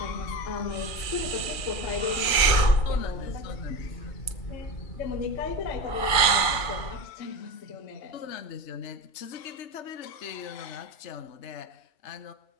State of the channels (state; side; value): late; right; 2.4 ms